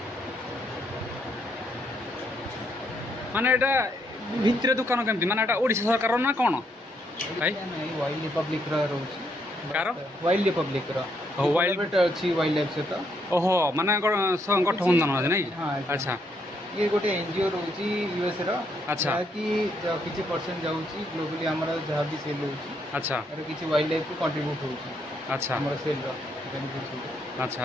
माने एटा भितर दुकान केमती माने एटा ओडिशा सरकार ना कोन भाई वाइल्ड रिपब्लिक रा रहउची कार वाइल्ड रिपब्लिक रा हो वाइल्ड बेट अछि वाइल्ड लाइफ से तो ओहो माने गठबंधन है नहीं। हां अच्छा ये गोटे एनजीओ रहउची यूएस रा। अच्छा कि किछि परसेंट जाउची ग्लोबली हमरा जहां भी सेल होउची। अच्छा और किछि वाइल्ड लाइफ को कंट्रीब्यूट होउची। अच्छा हमरा सेल रा बेनिफिट होउची। अच्छा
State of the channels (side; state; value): both; normal; correlation 0.74